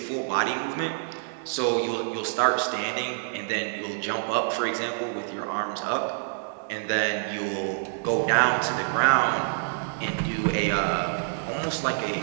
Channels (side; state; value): left; silent; digital silence